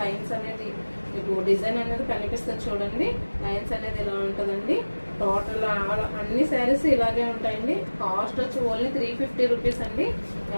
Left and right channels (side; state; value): both; inverted; correlation -1.00